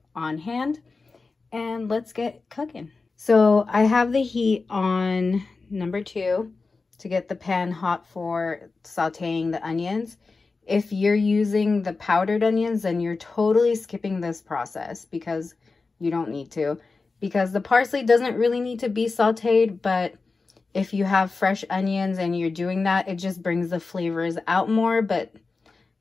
on hand. And let's get cooking. So I have the heat on number 2 to get the pan hot for sauteing the onions. If you're using the powdered onions, then you're totally skipping this process because you don't need to. Because the parsley doesn't really need to be sauteed, but if you have fresh onions and you're doing that, it just brings the flavors out more. But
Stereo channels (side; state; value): right; quieter; 4.0 dB